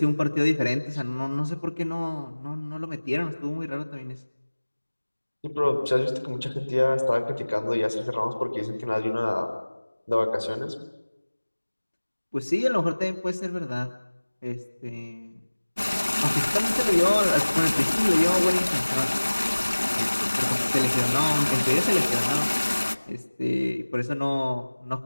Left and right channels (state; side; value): inverted; both; correlation -1.00